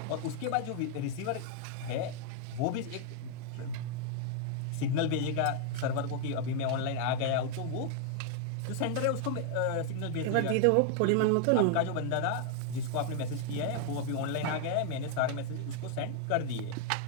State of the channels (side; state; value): both; different; correlation 0.00